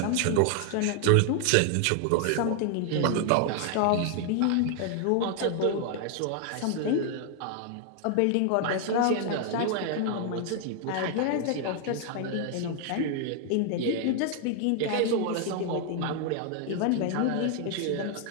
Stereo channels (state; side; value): different; both; correlation 0.00